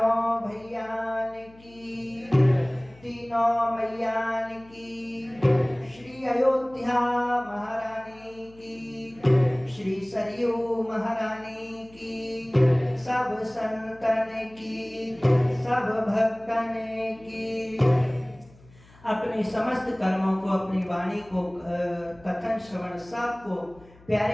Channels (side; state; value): left; noise; hum, 25 dB below the sound